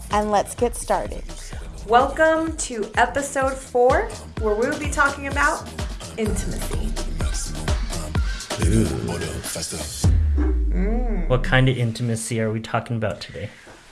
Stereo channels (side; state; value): both; identical; correlation 1.00